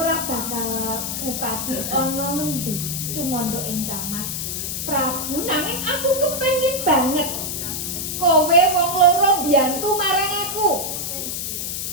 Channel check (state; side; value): noise; left; hiss, 3 dB below the sound